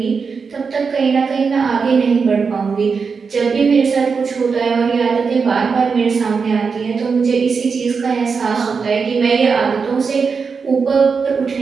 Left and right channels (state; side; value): quieter; left; 5.3 dB